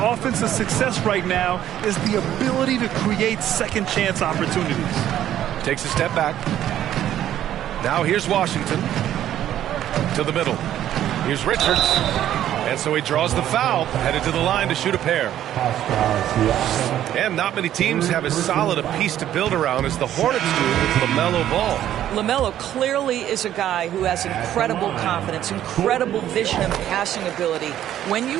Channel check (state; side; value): quieter; left; 11.7 dB